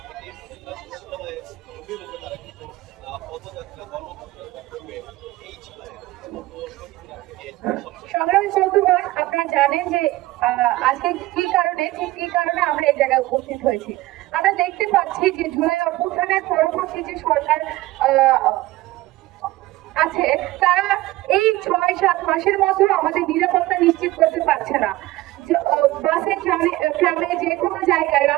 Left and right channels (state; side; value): quieter; left; 18.0 dB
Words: সংগ্রামী বন্ধুগণ, আপনারা জানেন যে আজকে কি কারণে আমরা এই জায়গায় উপস্থিত হয়েছি। আমরা দেখতে পাচ্ছি যে জুলাই অভ্যুত্থানের পরবর্তী যে সরকার আছে, তারা এই 6-7 মাসের মধ্যে আমাদের নিরাপত্তা নিশ্চিত করতে পারছে না। বাসে, ট্রামে, যে কোনো জায়গায়